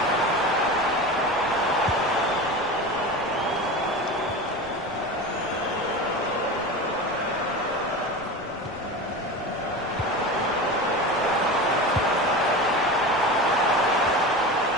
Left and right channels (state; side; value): noise; left; rumble, 23 dB below the sound